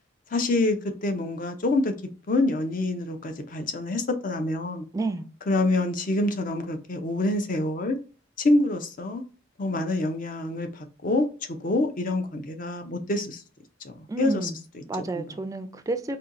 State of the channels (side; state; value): both; normal; correlation 0.62